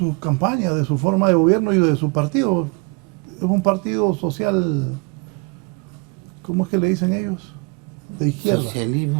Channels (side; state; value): left; quieter; 30.6 dB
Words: campaña, de su forma de gobierno y de su partido. Es un partido social, ¿cómo es que le dicen ellos? De izquierda.